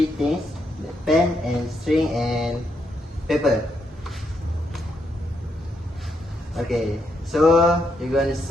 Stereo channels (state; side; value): normal; both; correlation 0.79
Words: things: the pen and string and paper. Okay, so you're gonna